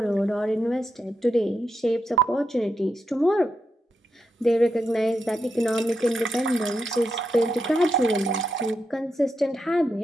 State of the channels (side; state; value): both; normal; correlation 0.84